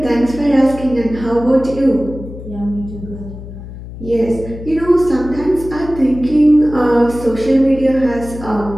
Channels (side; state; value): left; noise; hum, 13 dB below the sound